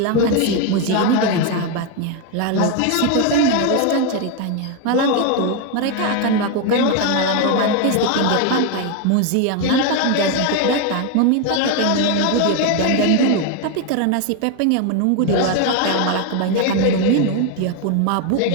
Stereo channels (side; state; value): both; different; correlation 0.01